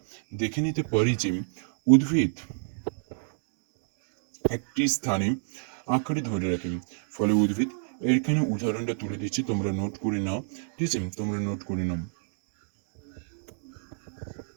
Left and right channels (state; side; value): silent; left; digital silence